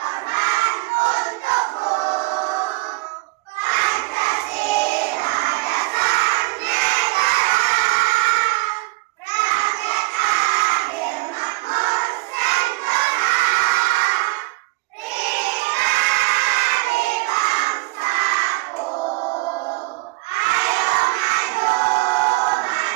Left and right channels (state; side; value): quieter; left; 23.9 dB